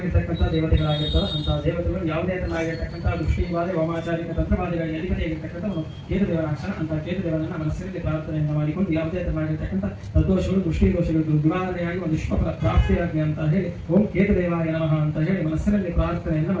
ದೇವತೆಗಳಾಗಿರ್ತಾರೆ. ಅಂತ ದೇವತೆಗಳು ಯಾವುದೇ ತರನಾಗಿರ್ತಕ್ಕಂಥ ದೃಷ್ಟಿವಾದ ವಾಮಾಚಾರಿಕ ತಂತ್ರವಾದಿಗಳಿಗೆ ಅಧಿಪತಿಯಾಗಿರ್ತಕ್ಕಂಥವನು ಕೇತು ದೇವರಾಕ್ಷಣ. ಅಂತ ಕೇತು ದೇವರನ್ನ ಮನಸ್ಸಿನಲ್ಲಿ ಪ್ರಾರ್ಥನೆಯನ್ನು ಮಾಡಿಕೊಂಡು ಯಾವುದೇ ತರನಾಗಿರ್ತಕ್ಕಂಥ ತದ್ದೋಷಗಳು ದೃಷ್ಟಿ ದೋಷಗಳು ನಿವಾರಣೆಯಾಗಿ ಒಂದು ಶುಭ ಪ್ರಾಪ್ತಿಯಾಗಿ ಅಂತ ಹೇಳಿ ಓಂ ಕೇತು ದೇವಾಯ ನಮಃ ಅಂತ ಹೇಳಿ ಮನಸ್ಸಿನಲ್ಲಿ ಪ್ರಾರ್ಥನೆಯನ್ನು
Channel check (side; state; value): both; identical; correlation 1.00